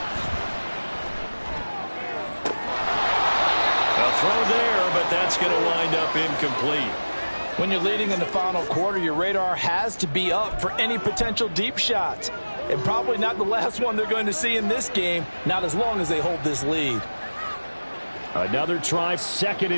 A throw there, but that's going to wind up incomplete. When you're leading in the final quarter, your radar has to be up for any potential deep shots. And probably not the last one they're going to see in this game, not as long as they hold this lead. Another try, 2nd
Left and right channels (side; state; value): both; inverted; correlation -1.00